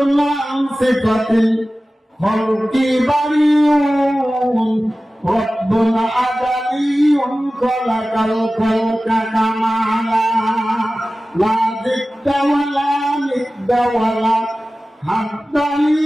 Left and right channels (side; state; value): both; normal; correlation 0.96